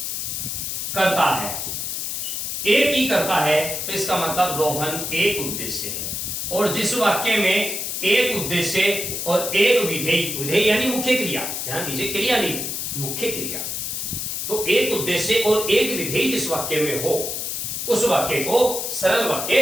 करता है, एक ही करता है, तो इसका मतलब रोहन एक उद्देश्य है। और जिस वाक्य में एक उद्देश्य और एक विधेय, विधेय यानी मुख्य क्रिया, ध्यान दीजिए क्रिया नहीं, मुख्य क्रिया, तो एक उद्देश्य और एक विधेय जिस वाक्य में हो उस वाक्य को सरल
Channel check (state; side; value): noise; left; hiss, 3 dB below the sound